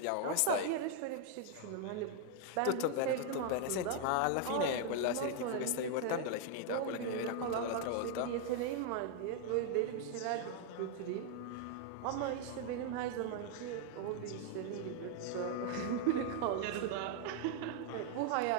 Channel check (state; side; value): different; both; correlation 0.00